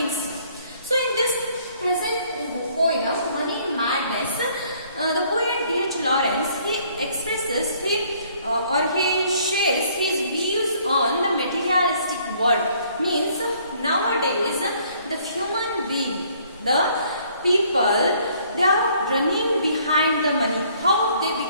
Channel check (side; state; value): both; inverted; correlation -0.62